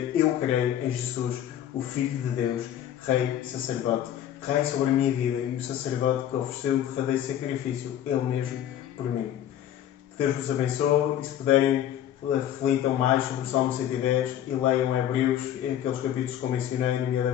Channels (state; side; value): quieter; right; 10.9 dB